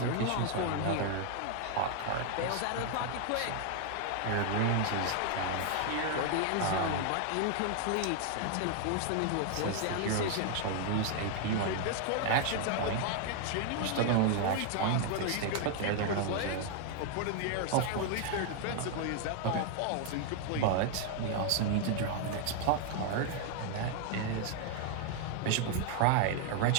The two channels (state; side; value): different; both; correlation 0.00